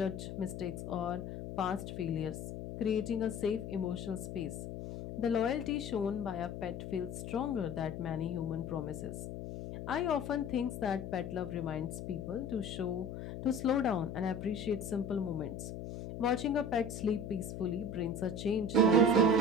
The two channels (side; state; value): left; noise; hum, 7 dB below the sound